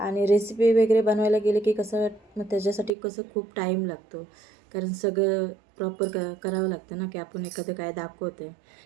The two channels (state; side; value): drops out; left; at 2.9 s